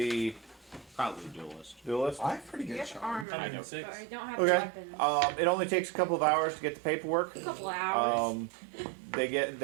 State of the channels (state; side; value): drops out; left; at 3.2 s